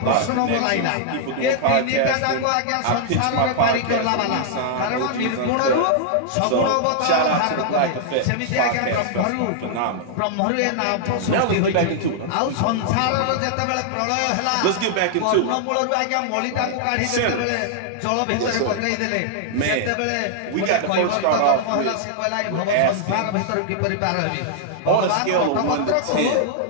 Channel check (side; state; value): both; different; correlation -0.01